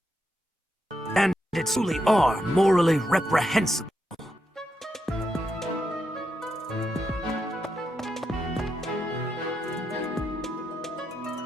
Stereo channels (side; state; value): both; normal; correlation 0.83